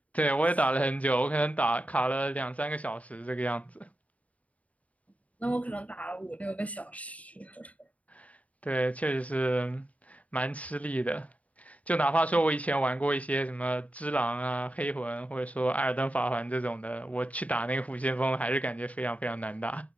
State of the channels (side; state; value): right; late; 0.068 ms